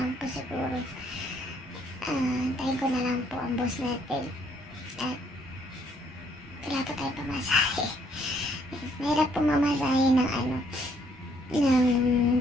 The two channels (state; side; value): normal; both; correlation 0.67